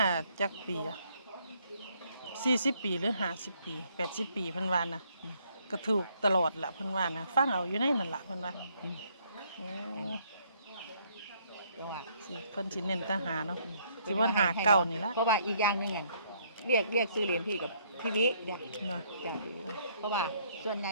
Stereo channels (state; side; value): inverted; both; correlation -0.67